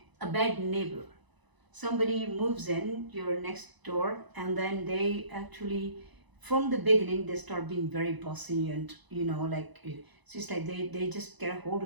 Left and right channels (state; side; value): late; left; 1.0 ms